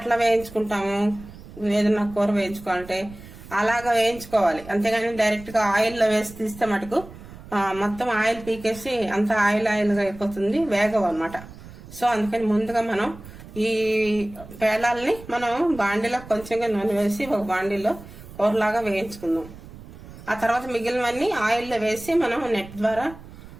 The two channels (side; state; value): right; noise; rumble, 17 dB below the sound